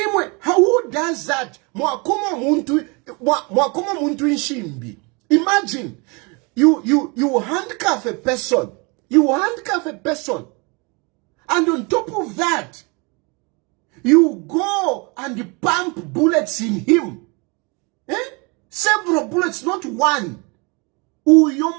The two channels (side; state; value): left; quieter; 30.0 dB